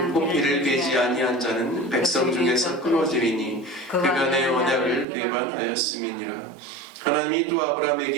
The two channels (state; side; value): drops out; left; at 5.1 s